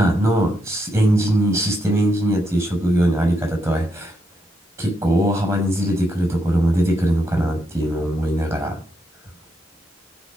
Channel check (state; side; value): normal; both; correlation 0.81